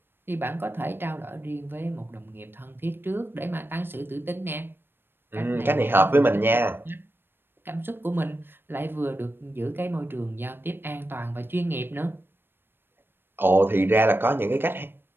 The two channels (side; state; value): left; late; 0.10 ms